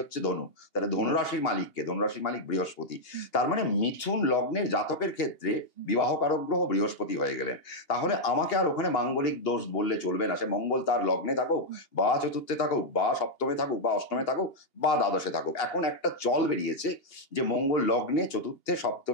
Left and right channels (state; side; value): late; right; 2.8 ms